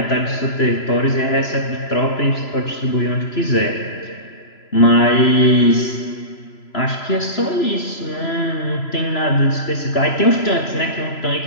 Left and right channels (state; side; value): late; right; 3.0 ms